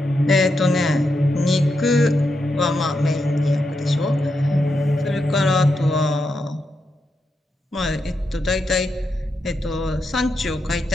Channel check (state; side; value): normal; both; correlation 0.84